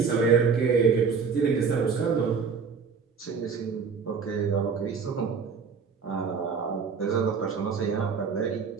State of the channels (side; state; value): left; quieter; 5.7 dB